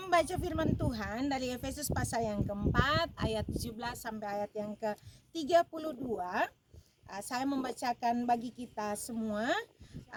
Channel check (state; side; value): identical; both; correlation 1.00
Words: membaca firman Tuhan dari Efesus pasal yang keempat, ayat 17 sampai ayat yang ke-32. Saya membacakan bagi kita semua